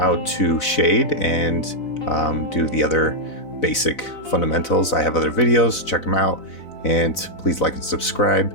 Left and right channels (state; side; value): late; right; 4.0 ms